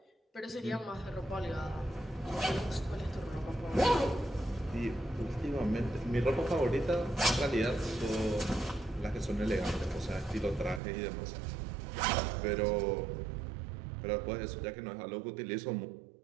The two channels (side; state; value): left; drops out; at 10.8 s